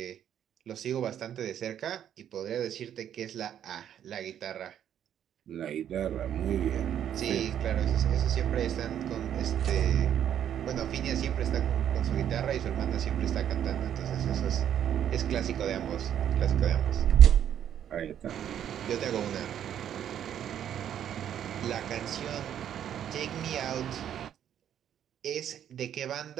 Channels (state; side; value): quieter; left; 9.9 dB